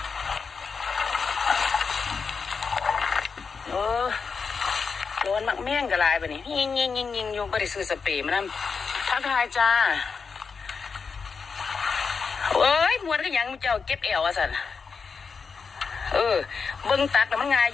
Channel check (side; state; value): right; quieter; 5.3 dB